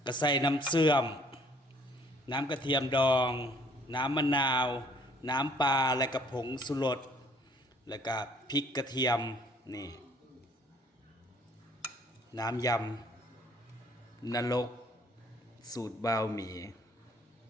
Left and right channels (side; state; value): both; normal; correlation 0.59